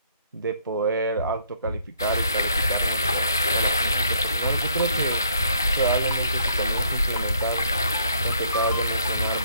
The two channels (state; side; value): inverted; both; correlation -0.65